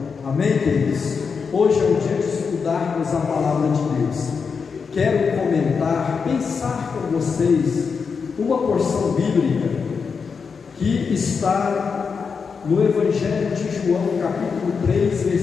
Amém, queridos? Hoje é o dia de estudarmos a palavra de Deus. Quero comentar, pensar com vocês uma porção bíblica que está no Evangelho de João, capítulo 3,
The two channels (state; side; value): quieter; right; 5.6 dB